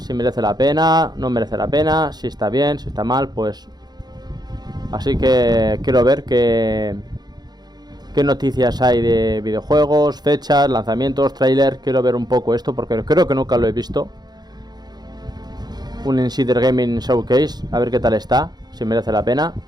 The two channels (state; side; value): late; left; 0.20 ms